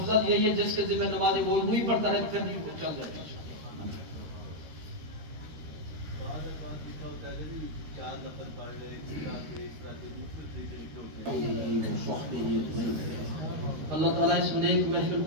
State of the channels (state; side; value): late; left; 13 ms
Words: یہی ہے جس کے ذمہ نماز ہے وہ وہی پڑھتا رہے، پھر نہیں چل جائے گا. چار نفل پڑھ لے، اس طرح کے مختلف طریقے لکھے ہوتے ہیں. اللہ تعالیٰ اس نیک محفل